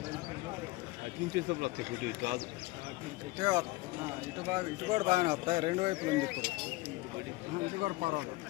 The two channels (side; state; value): right; quieter; 21.6 dB